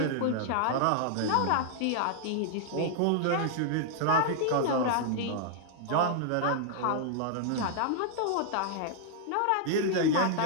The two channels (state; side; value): different; both; correlation -0.01